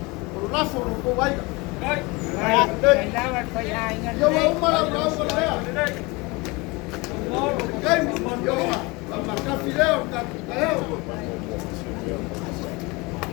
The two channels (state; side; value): quieter; right; 25.3 dB